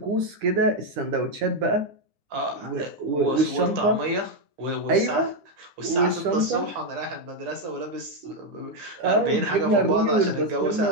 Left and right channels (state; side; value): late; left; 10 ms